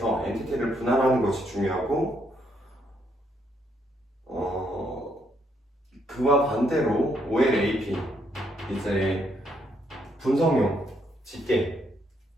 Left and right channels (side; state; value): both; normal; correlation 0.74